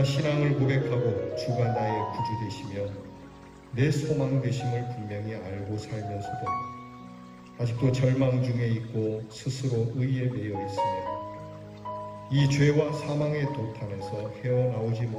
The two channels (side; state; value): both; identical; correlation 1.00